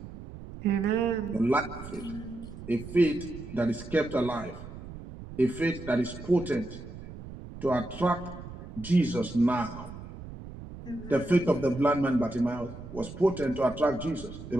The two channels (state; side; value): noise; right; rumble, 13 dB below the sound